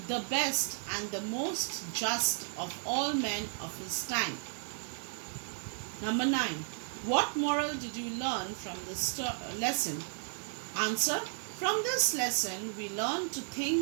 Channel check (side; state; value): left; silent; 55 dB below the other